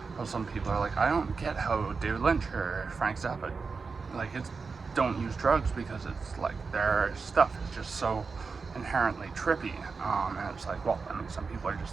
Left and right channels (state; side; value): quieter; left; 4.8 dB